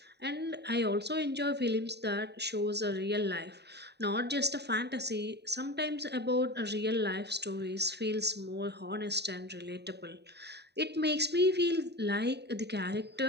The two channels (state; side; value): late; left; 0.49 ms